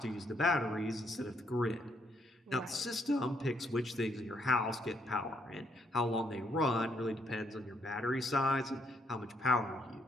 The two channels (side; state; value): both; normal; correlation 0.73